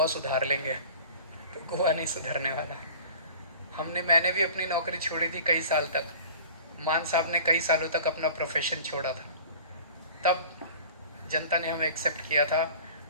सुधार लेंगे, तो गोवा नहीं सुधरने वाला. मैंने भी अपनी नौकरी छोड़ी थी कई साल तक. मान साहब ने कई सालों तक अपना प्रोफेशन छोड़ा था. तब जनता ने हमें एक्सेप्ट किया था,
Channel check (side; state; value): both; inverted; correlation -0.41